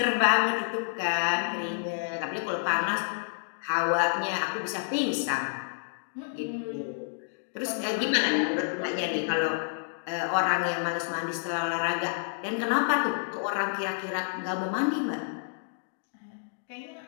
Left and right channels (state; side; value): silent; right; digital silence